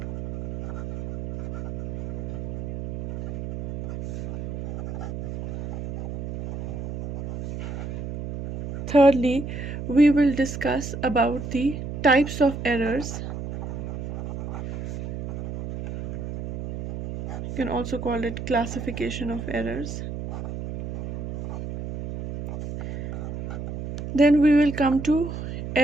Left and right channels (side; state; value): right; noise; hum, 7 dB below the sound